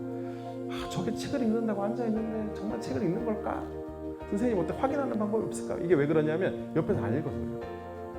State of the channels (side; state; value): both; identical; correlation 1.00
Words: 저게 책을 읽는다고 앉아있는데 정말 책을 읽는 걸까? 선생님 어떻게 확인하는 방법이 없을까? 이게 왜 그러냐면 옆에서 안 읽어서 그래요.